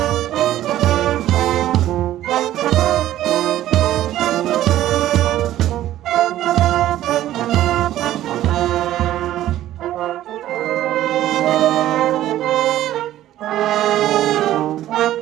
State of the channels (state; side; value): quieter; left; 13.4 dB